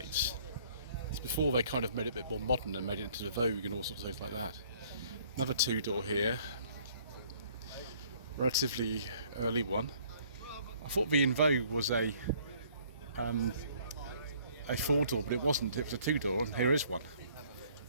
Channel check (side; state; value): both; inverted; correlation -0.59